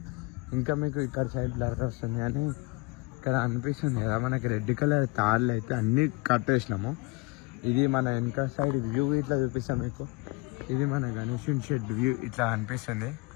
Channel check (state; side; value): quieter; right; 26.0 dB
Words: ఇంకా మీకు ఇక్కడ సైడ్ బ్లర్ వస్తుంది కానీ ఇక్కడ అనిపిస్తుంది కదా మనకి రెడ్ కలర్ తాళ్ళు అయితే అన్నీ కట్టేసినాము. ఇది మన వెనక సైడ్ వ్యూ ఇట్లా చూపిస్తాం మీకు. ఇది మన గణేషన్ షెడ్ వ్యూ ఇట్లా అనిపిస్తుంది,